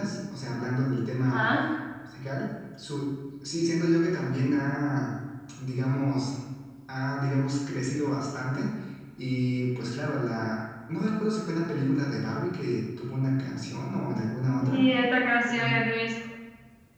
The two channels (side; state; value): both; identical; correlation 1.00